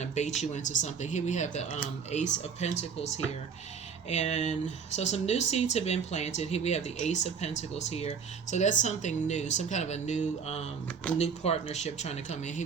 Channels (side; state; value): left; quieter; 6.2 dB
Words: to bait you into something. Here we have the Ace of Pentacles here. And so some new seeds have been planted. Here we have the Ace of Pentacles here. So that's something new, some kind of a new partnership trying to come in.